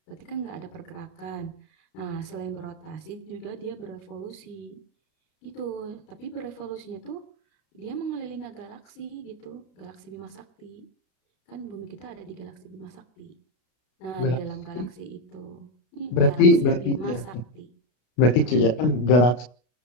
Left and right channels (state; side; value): late; right; 33 ms